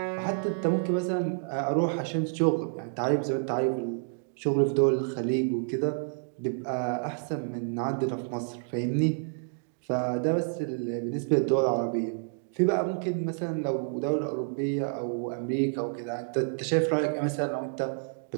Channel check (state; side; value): silent; left; digital silence